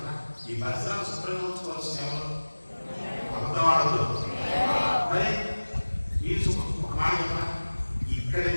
ఈ పరిసరాలు శుభ్రంగా ఉంచుకోవాల్సిన ఎవరు? అబద్ధవాడదు. మరి మీరు ఒక మాట చెప్పిన ఇక్కడ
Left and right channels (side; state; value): both; inverted; correlation -1.00